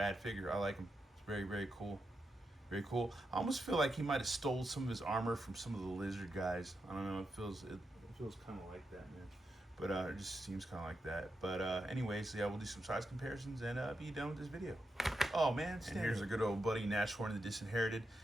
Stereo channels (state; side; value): normal; both; correlation 0.86